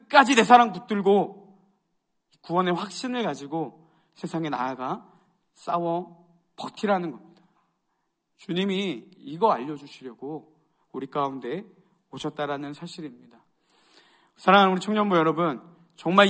내 사랑 붙들고 구원의 확신을 가지고 세상에 나아가 싸워 버티라는 겁니다. 주님이 이거 알려주시려고 우리 가운데 오셨다라는 사실입니다. 사랑하는 우리 청년부 여러분, 정말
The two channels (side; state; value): both; identical; correlation 1.00